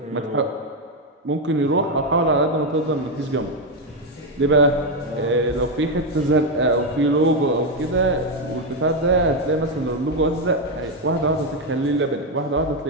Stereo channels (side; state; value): both; normal; correlation 0.06